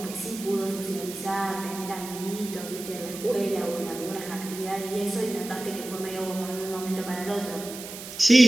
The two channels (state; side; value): noise; right; hiss, 11 dB below the sound